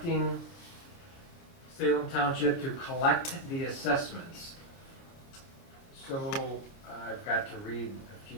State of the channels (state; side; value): late; right; 29 ms